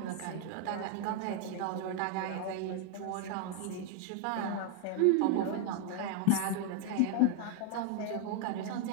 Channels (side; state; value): both; different; correlation 0.01